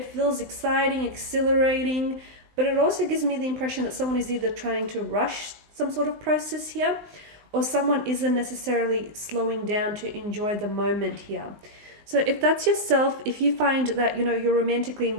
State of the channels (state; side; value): late; left; 19 ms